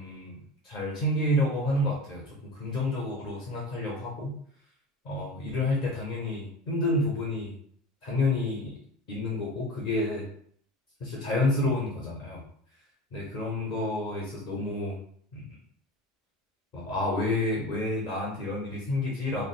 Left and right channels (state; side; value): normal; both; correlation 0.33